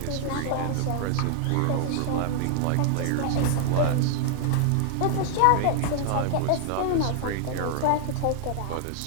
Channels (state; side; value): different; both; correlation -0.01